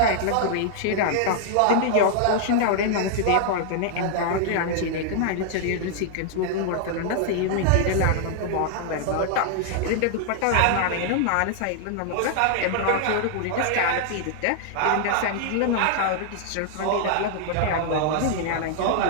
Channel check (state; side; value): different; both; correlation -0.01